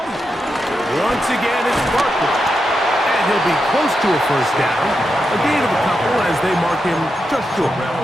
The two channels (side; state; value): both; normal; correlation 0.86